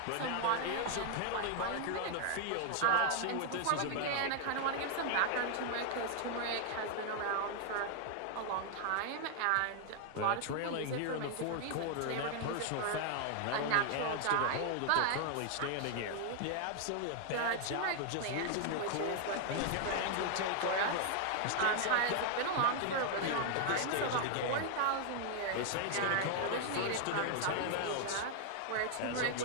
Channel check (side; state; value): both; different; correlation 0.00